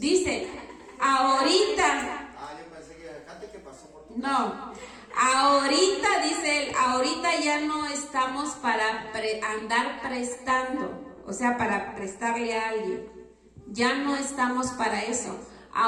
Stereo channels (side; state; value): both; identical; correlation 1.00